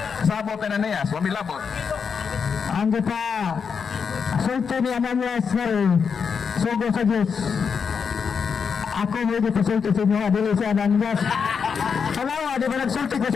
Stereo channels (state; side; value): quieter; right; 6.2 dB